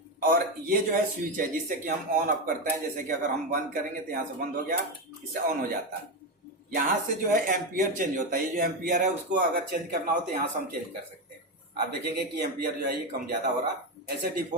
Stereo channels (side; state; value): both; normal; correlation 0.12